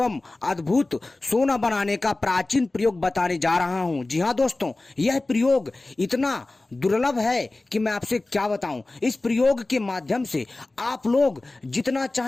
अद्भुत सोना बनाने का प्राचीन प्रयोग बताने जा रहा हूं। जी हां दोस्तों, यह प्रयोग इतना दुर्लभ है कि मैं आपसे क्या बताऊं। इस प्रयोग के माध्यम से आप लोग जितना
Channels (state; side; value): quieter; right; 3.0 dB